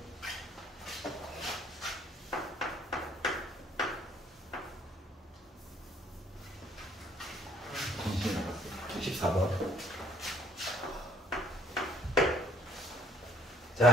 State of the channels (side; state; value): both; normal; correlation 0.61